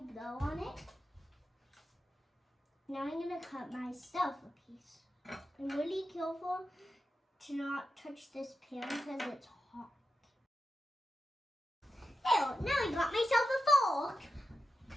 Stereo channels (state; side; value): normal; both; correlation 0.90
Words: blow on it? Now I'm gonna cut myself a piece. I'm really careful to not touch this pan because it's hot. Ew, now I got myself a fork.